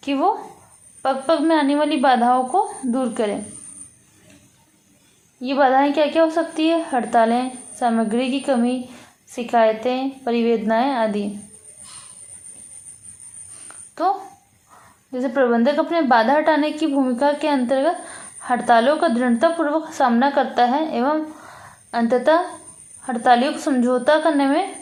कि वो पग पग में आने वाली बाधाओं को दूर करें। ये बाधाएं क्या क्या हो सकती है? हड़तालें, सामग्री की कमी, शिकायतें, परिवेदनाएं आदि। तो जैसे प्रबंधक अपने बाधा हटाने की भूमिका के अंतर्गत हड़तालों का दृढ़तापूर्वक सामना करता है एवं अंततः हड़तालियों को समझौता करने में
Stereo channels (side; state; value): both; identical; correlation 1.00